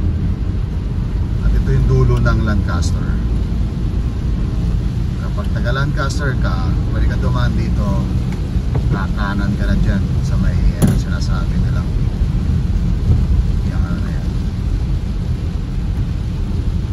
Lancaster. Kapag taga Lancaster ka, pwede ka dumaan dito, kakanan ka na dyan sa may sinasabi nilang yung ano na yan.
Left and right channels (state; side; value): identical; both; correlation 1.00